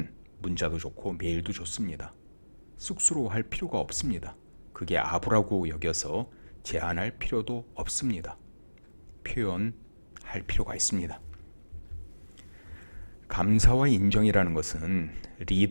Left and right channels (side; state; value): both; inverted; correlation -1.00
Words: 문자도 좋고 메일도 좋습니다. 쑥스러워할 필요가 없습니다. 그게 아부라고 여겨서 제한할 필요도 없습니다. 표현할 필요가 있습니다. 감사와 인정이라는 것은